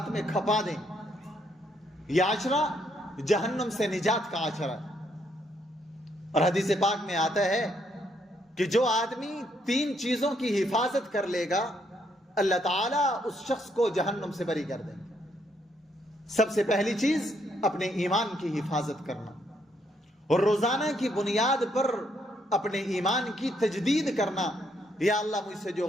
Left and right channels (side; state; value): both; normal; correlation 0.73